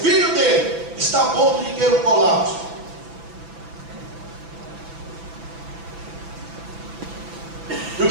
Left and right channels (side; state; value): left; late; 6.0 ms